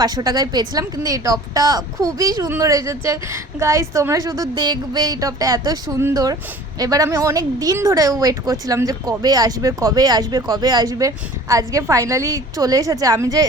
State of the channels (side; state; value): both; normal; correlation 0.45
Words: টাকায় পেয়েছিলাম। কিন্তু এই টপটা খুবই সুন্দর এসেছে গাইস, তোমরা শুধু দেখবে, এই টপটা এত সুন্দর। এবার আমি অনেক দিন ধরে ওয়েট করছিলাম যে কবে আসবে। আজকে ফাইনালি চলে এসেছে। আমি যে